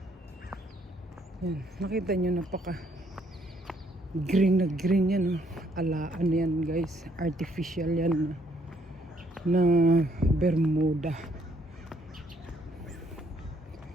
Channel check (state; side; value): normal; both; correlation 0.68